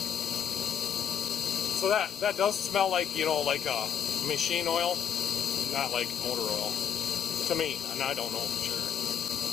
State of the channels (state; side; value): quieter; right; 8.3 dB